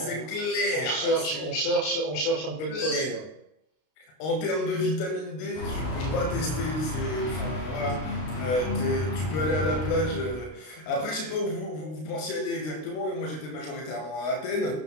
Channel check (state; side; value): late; right; 32 ms